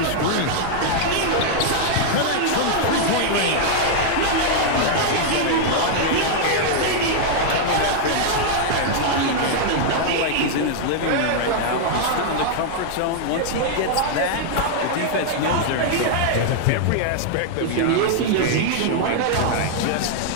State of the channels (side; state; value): both; different; correlation -0.01